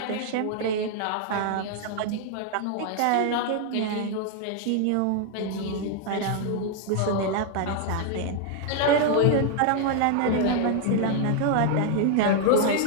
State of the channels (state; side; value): different; both; correlation 0.00